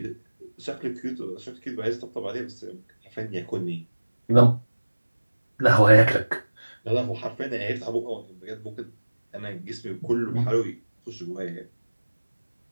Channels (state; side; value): inverted; both; correlation -1.00